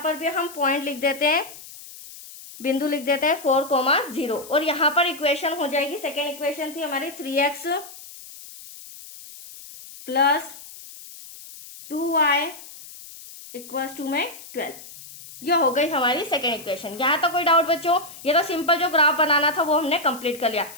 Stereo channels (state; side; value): noise; left; hiss, 16 dB below the sound